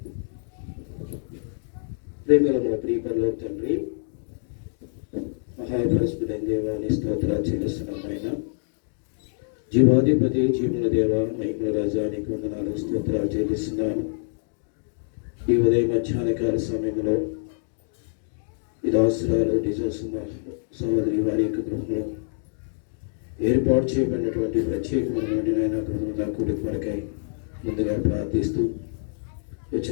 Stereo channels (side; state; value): right; silent; digital silence